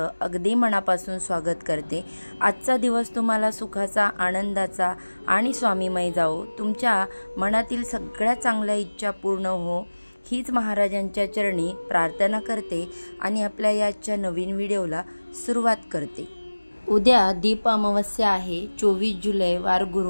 अगदी मनापासून स्वागत करते। आजचा दिवस तुम्हाला सुखाचा, आनंदाचा आणि स्वामीमय जाओ। तुमच्या मनातील सगळ्या चांगल्या इच्छा पूर्ण हो, हीच महाराजांच्या चरणी प्रार्थना करते आणि आपल्या याच्या नवीन व्हिडिओला सुरुवात करते। उद्या दीप अमावस्या आहे, 24 जुलै वार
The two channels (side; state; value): both; inverted; correlation -1.00